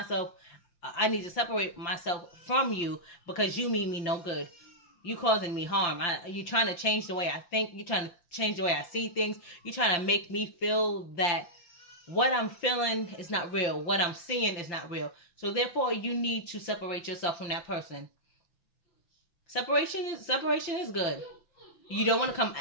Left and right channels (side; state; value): right; late; 5.8 ms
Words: I need to separate myself from you, because you mean me no good. You causing me harm. You're trying to change the way I think. You're trying to change the way I see things. You're trying to make me feel that what I'm feeling is not real. What I'm seeing is not real. So therefore, you need to separate yourself from that person. Separation is good. You don't want to